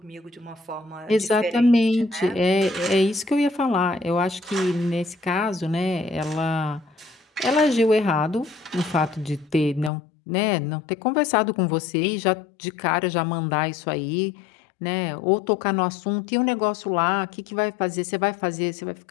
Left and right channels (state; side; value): drops out; right; at 9.9 s